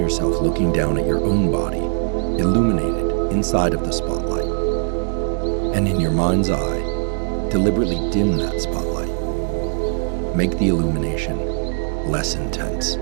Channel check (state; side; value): silent; left; digital silence